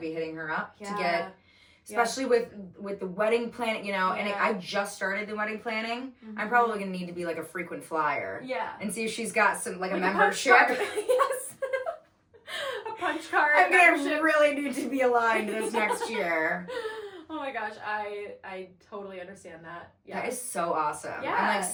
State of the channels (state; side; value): identical; both; correlation 1.00